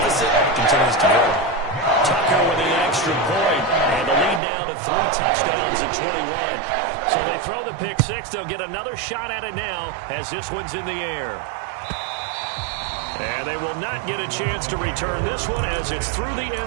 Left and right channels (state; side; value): drops out; left; at 4.4 s